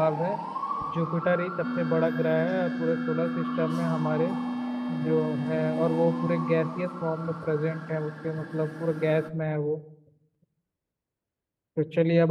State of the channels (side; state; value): both; identical; correlation 1.00